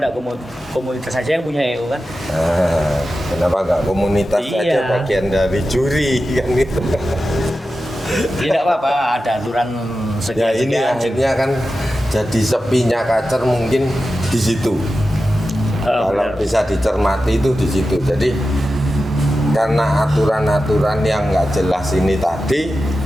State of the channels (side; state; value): both; normal; correlation 0.92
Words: komunitas saja yang punya EO kan? Nah, kenapa nggak komunitas Iya. saja bagian dari juri kan itu? Tidak apa-apa, ada aturan Ya ini sekian-sekian. akhirnya kan jadi sepinya kacer mungkin di situ. Kalau Benar. bisa dicermati itu di situ. Jadi karena aturan-aturan yang nggak jelas ini tadi,